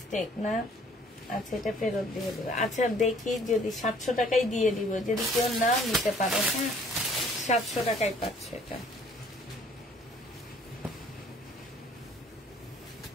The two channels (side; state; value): both; normal; correlation 0.57